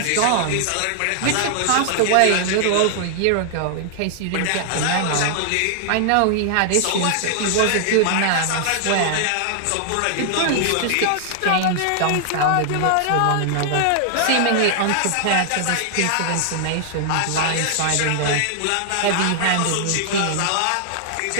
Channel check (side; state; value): both; different; correlation 0.00